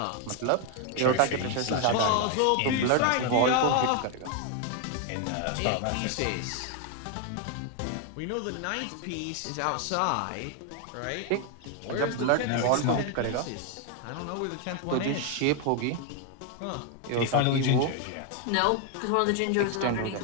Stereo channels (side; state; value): both; different; correlation 0.01